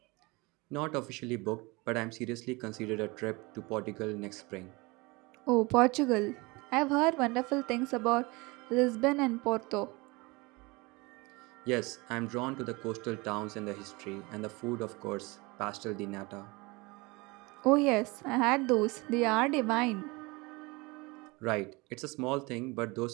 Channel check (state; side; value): quieter; left; 24.9 dB